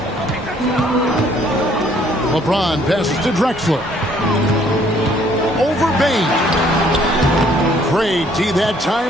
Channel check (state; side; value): normal; both; correlation 0.63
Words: LeBron passes to Drexler. Over Bane. Great D that